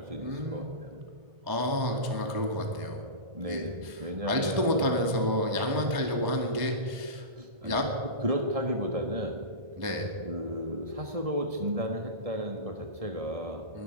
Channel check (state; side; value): late; left; 1.1 ms